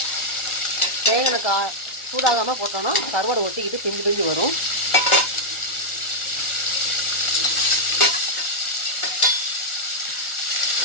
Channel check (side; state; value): right; late; 1.4 ms